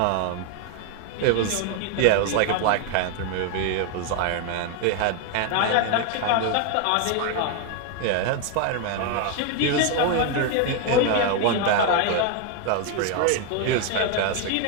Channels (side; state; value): both; different; correlation 0.01